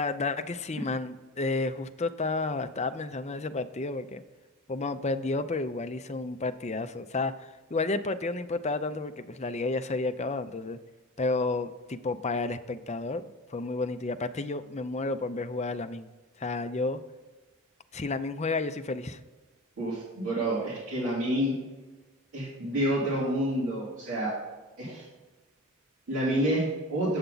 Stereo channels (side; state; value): both; normal; correlation 0.32